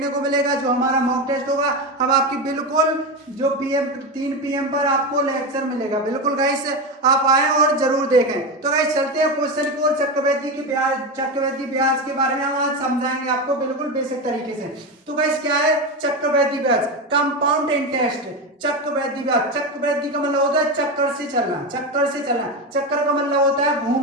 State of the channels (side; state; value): both; normal; correlation 0.17